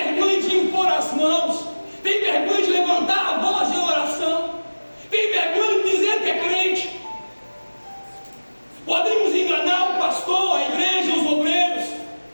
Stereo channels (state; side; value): inverted; both; correlation -1.00